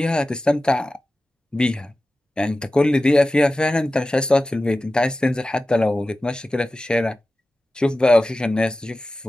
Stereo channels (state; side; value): normal; both; correlation 0.95